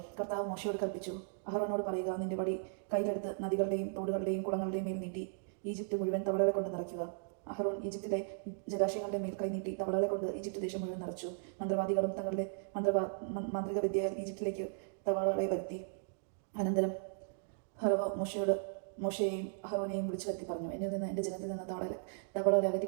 കർത്താവ് മോശയോട് കൽപ്പിച്ചു, അഹറോനോട് പറയുക, നിന്റെ വടി കയ്യിലെടുത്ത് നദികളുടെയും തോടുകളുടെയും കുളങ്ങളുടെയും മേൽ നീട്ടി ഈജിപ്റ്റ് മുഴുവൻ തവളകളെ കൊണ്ട് നിറയ്ക്കുക. അഹറോൻ ഈജിപ്തിലെ ജലാശയങ്ങളുടെ മേൽ കൈനീട്ടി തവളകളെ കൊണ്ട് ഈജിപ്റ്റ് ദേശം മുഴുവൻ നിറച്ചു. മന്ത്രവാദികളും തങ്ങളുടെ മാന്ത്രിക വിദ്യയാൽ ഈജിപ്തിലേക്ക് തവളകളെ വരുത്തി. അനന്തരം ഫറവോ മോശയെയും അഹറോനെയും വിളിച്ചു വരുത്തി പറഞ്ഞു, എന്നിൽ നിന്ന് എന്റെ ജനത്തിൽ നിന്ന് തവളകളെ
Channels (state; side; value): silent; left; digital silence